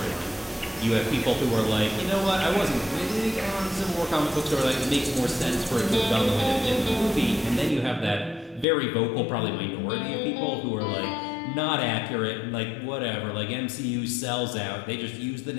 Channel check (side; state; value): right; drops out; at 8.7 s